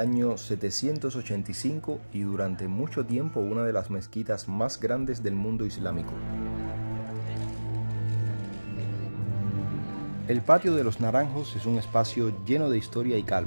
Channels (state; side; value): inverted; both; correlation -1.00